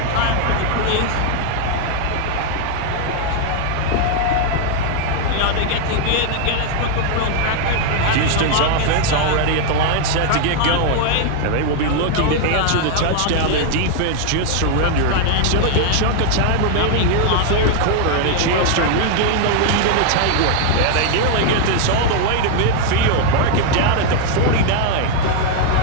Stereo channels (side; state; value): both; different; correlation 0.00